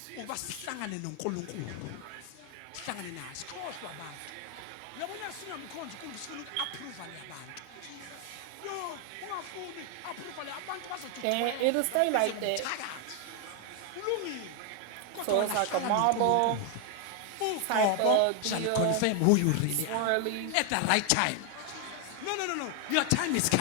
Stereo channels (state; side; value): different; both; correlation 0.00